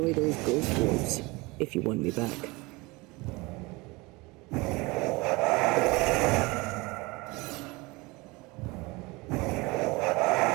those ghost wards, if you want me back.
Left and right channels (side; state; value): left; quieter; 24.1 dB